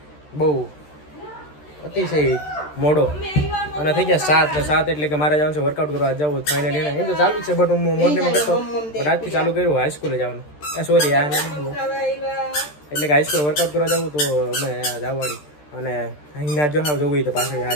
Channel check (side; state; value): right; late; 13 ms